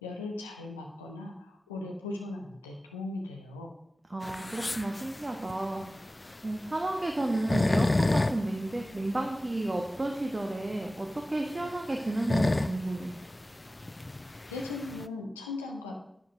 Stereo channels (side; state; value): both; normal; correlation 0.95